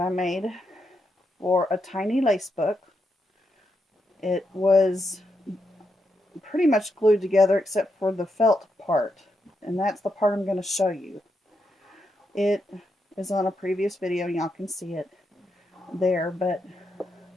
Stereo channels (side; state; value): both; normal; correlation 0.83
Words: made for a tiny lace book. It was pretty much glued together except for the felt part, and that's the part I'm going to show you. It is on a previous video, y'all can see it there, but